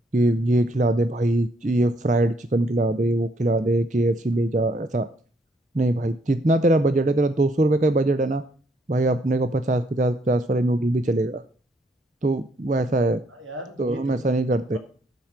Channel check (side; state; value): both; normal; correlation 0.70